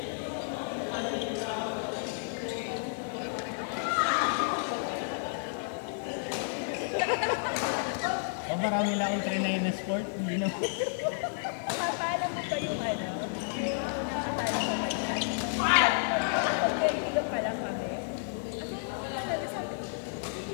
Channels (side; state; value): right; silent; digital silence